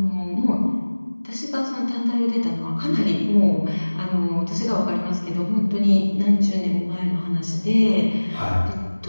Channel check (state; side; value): inverted; both; correlation -1.00